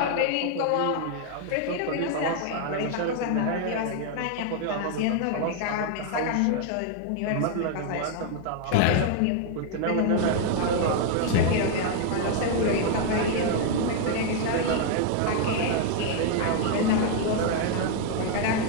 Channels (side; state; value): both; different; correlation 0.00